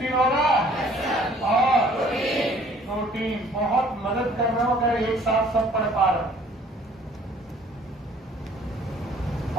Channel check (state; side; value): normal; both; correlation 0.56